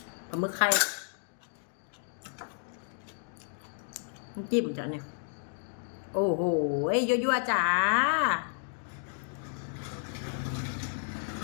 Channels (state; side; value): silent; right; digital silence